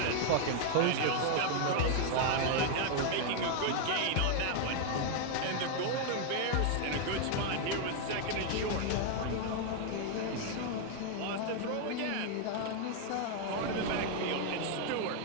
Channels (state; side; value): different; both; correlation 0.00